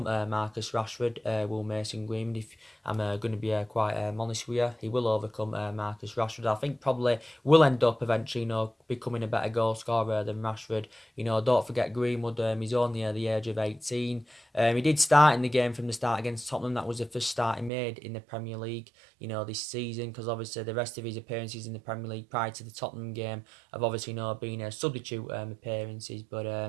Marcus Rashford, Will Mason Greenwood. If I'm going to be quite honest with you, he will overcome Marcus Rashford. I think probably will end up eventually, becoming a better goal scorer than Rashford. Don't forget Greenwood. He's only at the age of 18. He did start in the game from the start against Tottenham. That was the first start he made in the Premier League, this season, because obviously the rest of his appearances in the Premier League prior to the Tottenham game have obviously been substitute appearances.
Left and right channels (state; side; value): drops out; left; at 17.7 s